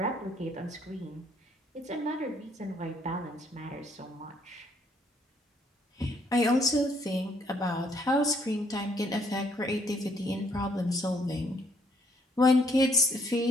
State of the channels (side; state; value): both; normal; correlation 0.67